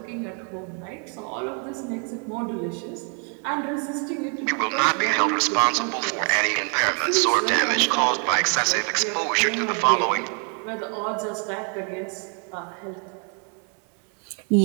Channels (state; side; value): quieter; left; 39.8 dB